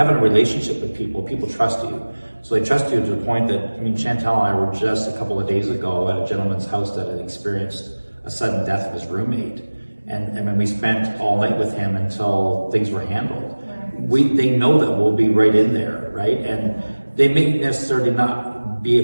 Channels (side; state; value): both; inverted; correlation -1.00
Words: a relationship with people trust you. So they trust you to the point that, Shantel and I were just a couple of days ago at a gentleman's house that had experienced a sudden death of his roommate. And when we spent all night with him until things were handled. They know that we'll be right in there, right? And they may necessarily not be